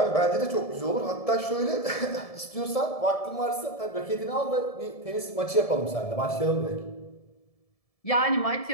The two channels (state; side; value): late; right; 1.7 ms